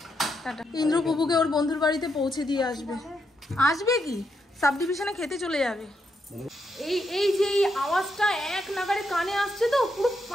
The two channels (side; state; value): both; normal; correlation 0.81